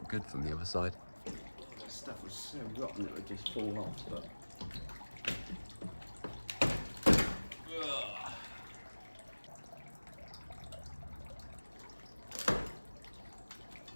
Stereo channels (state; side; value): inverted; both; correlation -1.00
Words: good from the other side. Oh, that stuff was so rotten it would just fall off, but...